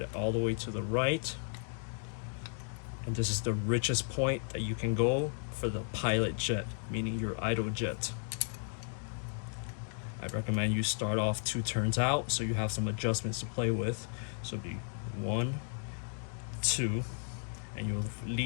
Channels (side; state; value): right; silent; 55 dB below the other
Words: all the way to the right. And this is the richest point that you can go for the pilot jet, meaning your idle jet. I recommend you start off 2 turns out so you have some adjustments to play with. So it'll be 1, 2, and you'll have